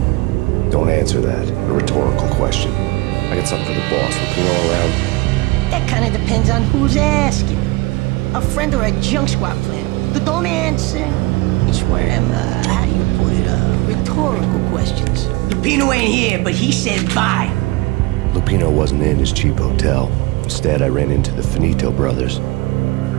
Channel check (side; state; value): left; quieter; 22.5 dB